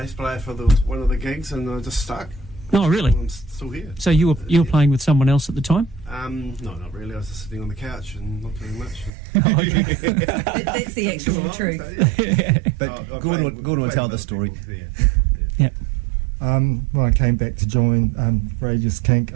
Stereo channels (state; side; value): drops out; left; at 9.1 s